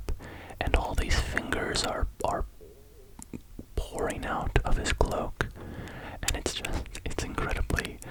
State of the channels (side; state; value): both; identical; correlation 1.00